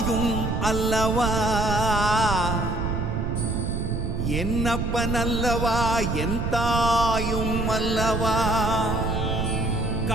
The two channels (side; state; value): right; noise; rumble, 1 dB below the sound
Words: அல்லவா, என்னப்பன் அல்லவா என் தாயும் அல்லவா.